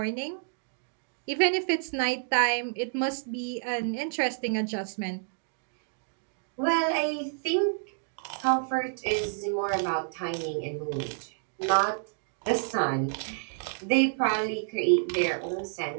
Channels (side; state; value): left; silent; digital silence